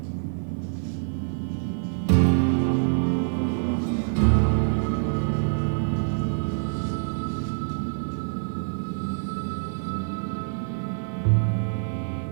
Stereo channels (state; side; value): silent; left; 61 dB below the other